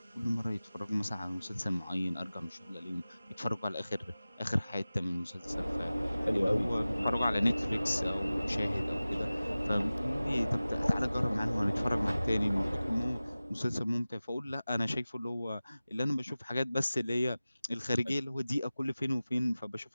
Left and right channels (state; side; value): inverted; both; correlation -0.97